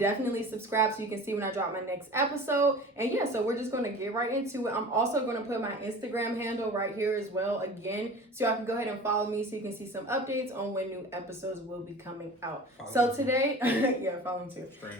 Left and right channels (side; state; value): both; normal; correlation 0.39